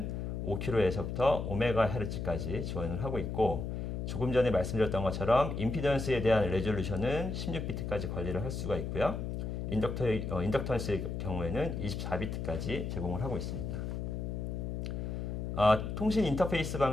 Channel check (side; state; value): left; noise; hum, 4 dB below the sound